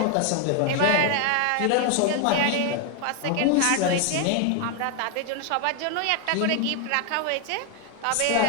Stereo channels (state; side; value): different; both; correlation 0.01